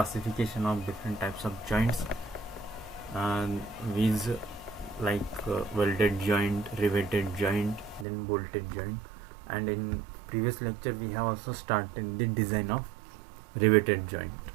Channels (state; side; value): drops out; left; at 8.1 s